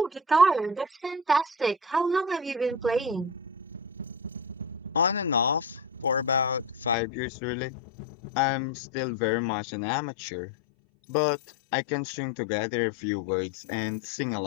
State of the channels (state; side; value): drops out; right; at 7.0 s